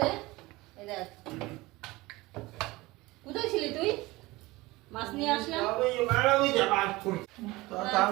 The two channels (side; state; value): left; quieter; 20.7 dB